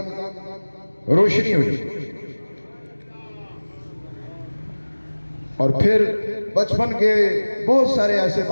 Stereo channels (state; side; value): inverted; both; correlation -1.00